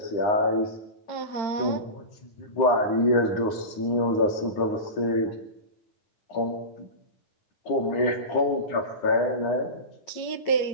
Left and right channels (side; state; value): right; late; 9.8 ms